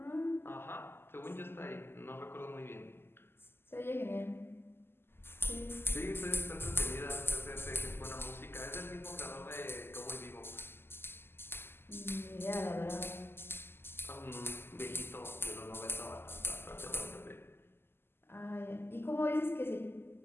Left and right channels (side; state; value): right; late; 0.11 ms